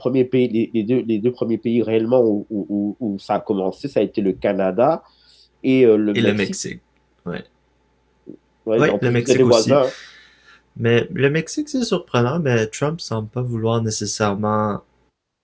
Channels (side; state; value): both; identical; correlation 1.00